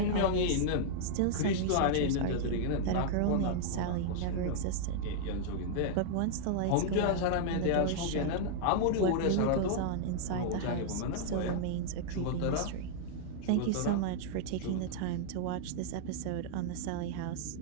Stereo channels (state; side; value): different; both; correlation -0.01